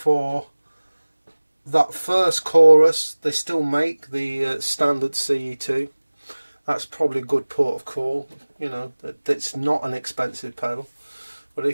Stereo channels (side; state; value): both; inverted; correlation -1.00